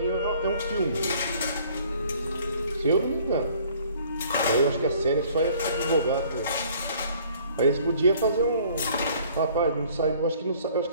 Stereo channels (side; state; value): both; inverted; correlation -0.56